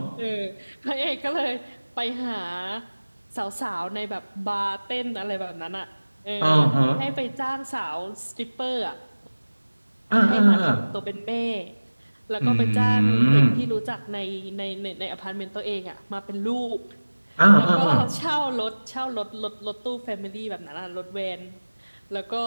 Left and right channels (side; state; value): both; inverted; correlation -1.00